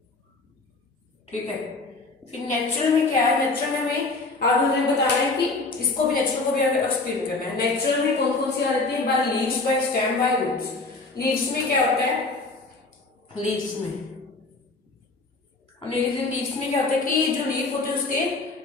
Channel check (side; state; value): right; quieter; 3.6 dB